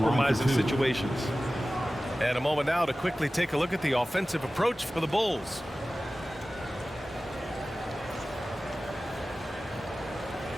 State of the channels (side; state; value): both; normal; correlation 0.96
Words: situations. And a moment now to quickly take a look at the offensive approach for the Bulls.